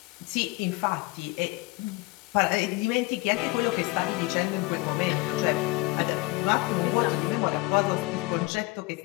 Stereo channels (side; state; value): right; quieter; 21.8 dB